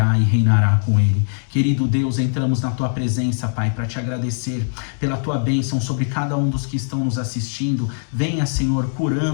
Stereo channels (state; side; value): silent; right; digital silence